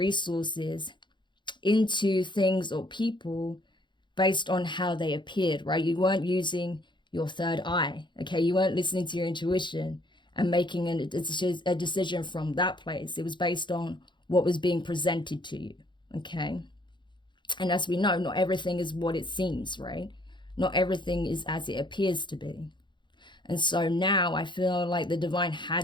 into things or people based on how they appeared, right? You weren't using your third eye, okay? You weren't listening to your intuition and making a decision from that place. It was based on what was being presented to you, okay? And as we know, not everything is what it seems, right? Not everything is as it appears to be. And so now I feel like the divine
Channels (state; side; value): late; right; 0.23 ms